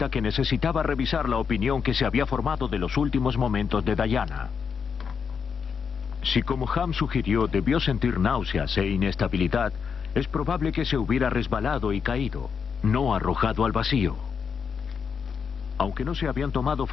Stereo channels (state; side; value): quieter; right; 6.4 dB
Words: que necesitaba revisar la opinión que se había formado de los últimos momentos de Diana. Si, como Ham sugirió, debió sentir náuseas e inestabilidad, es probable que se hubiera resbalado y caído, no arrojado al vacío. Aunque no se habían tomado